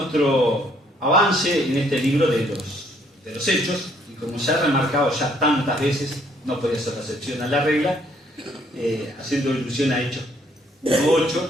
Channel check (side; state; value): both; normal; correlation 0.66